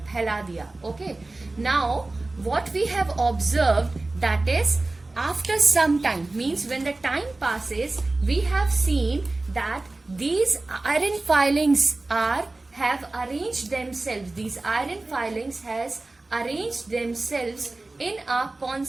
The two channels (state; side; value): quieter; left; 3.1 dB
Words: फैला दिया. Okay, now what we have observed, that is after some time, means when the time passes, we have seen that these iron filings have arranged themselves. These iron filings has arranged themselves in a